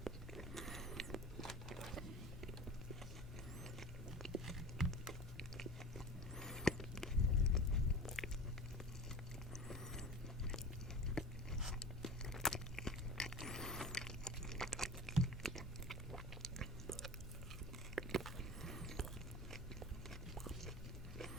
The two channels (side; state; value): both; normal; correlation 0.36